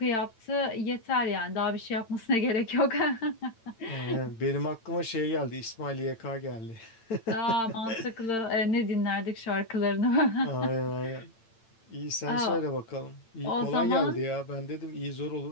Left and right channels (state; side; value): late; right; 8.9 ms